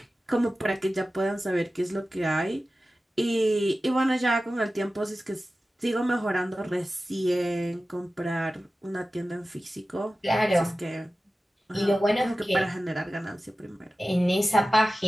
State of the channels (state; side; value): normal; both; correlation 0.95